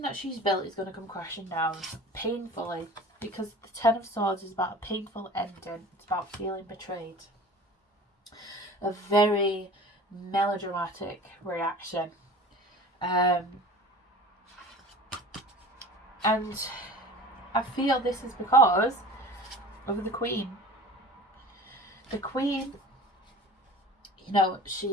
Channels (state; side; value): normal; both; correlation 0.40